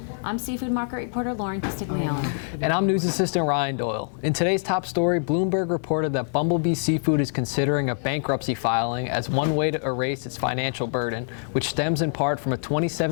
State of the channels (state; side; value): silent; right; digital silence